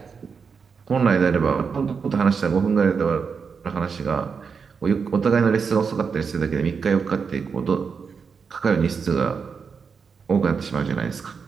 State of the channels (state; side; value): quieter; left; 5.8 dB